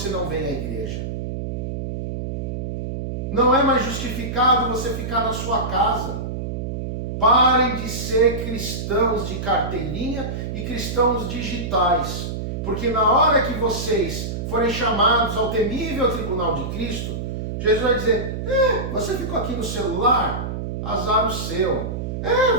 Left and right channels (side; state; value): right; noise; hum, 4 dB below the sound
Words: não vem à igreja? Não é mais justificado você ficar na sua casa. Parem de ser cristãos de carteirinha e cristãos digitais. Porque na hora que vocês forem chamados ao temível tribunal de Cristo, Jesus vai dizer, você ficou aqui no celular? Azar o seu.